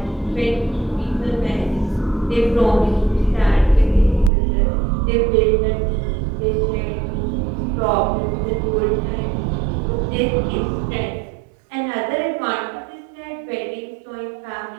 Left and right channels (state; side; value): drops out; left; at 4.3 s